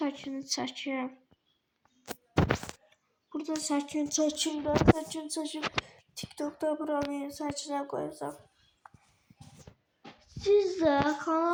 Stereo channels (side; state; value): both; identical; correlation 1.00